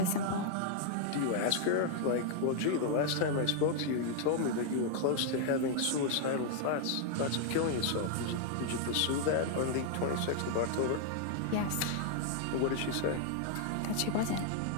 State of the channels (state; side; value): different; both; correlation 0.00